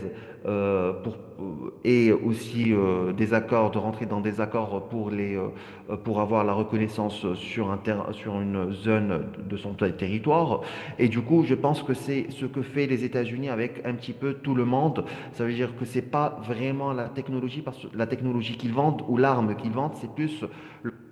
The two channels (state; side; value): identical; both; correlation 1.00